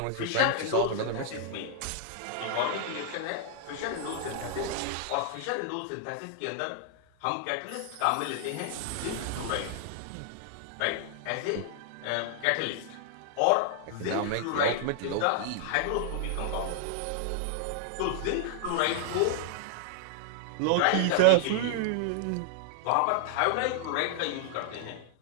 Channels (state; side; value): different; both; correlation -0.01